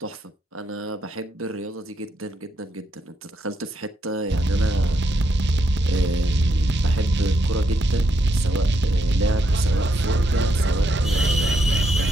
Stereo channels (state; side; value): normal; both; correlation 0.79